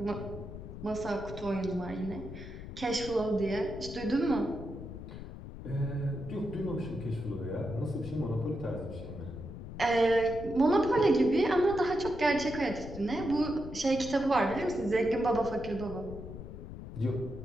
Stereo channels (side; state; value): left; noise; rumble, 11 dB below the sound